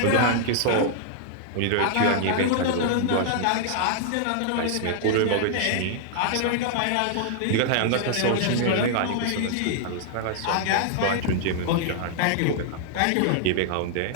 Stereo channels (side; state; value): both; different; correlation -0.01